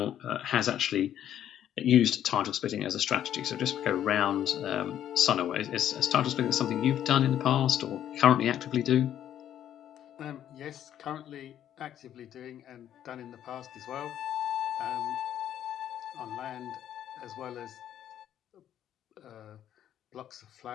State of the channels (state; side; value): quieter; right; 10.8 dB